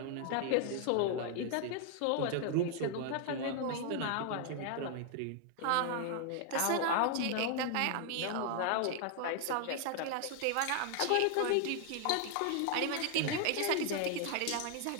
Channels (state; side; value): different; both; correlation 0.00